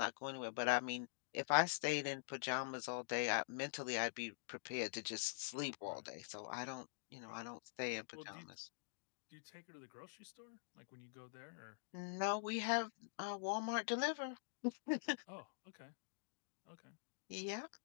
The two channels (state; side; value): silent; right; digital silence